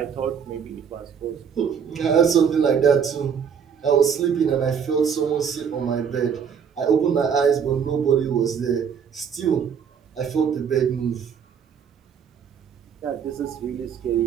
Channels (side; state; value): left; quieter; 7.2 dB